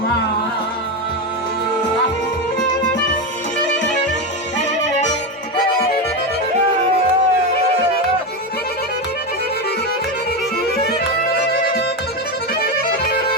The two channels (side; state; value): both; normal; correlation 0.13